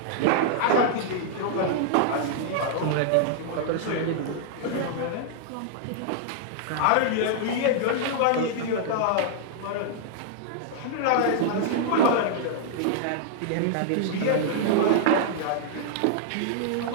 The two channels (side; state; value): both; different; correlation -0.01